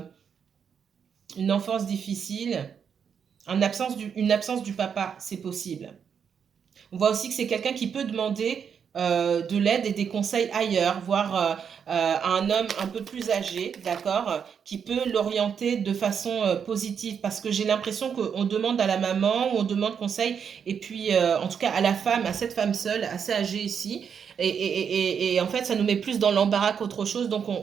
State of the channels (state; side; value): quieter; left; 7.2 dB